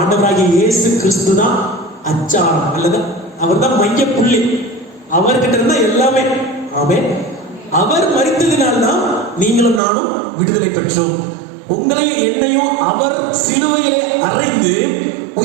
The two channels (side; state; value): left; drops out; at 9.8 s